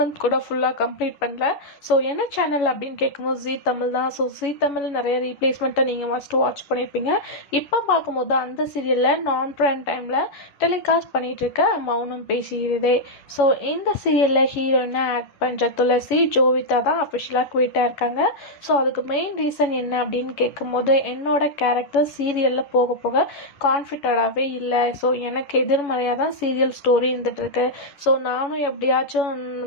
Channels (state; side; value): late; right; 11 ms